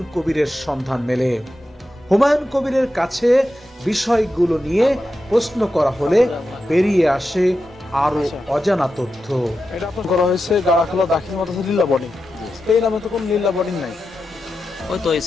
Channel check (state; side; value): normal; both; correlation 0.90